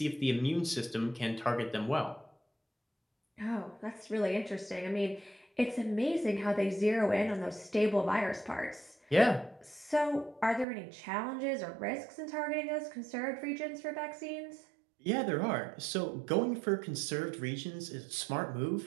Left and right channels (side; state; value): left; drops out; at 10.7 s